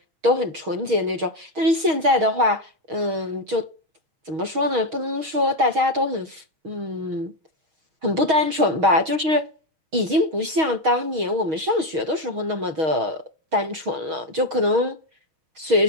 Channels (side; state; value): left; late; 6.3 ms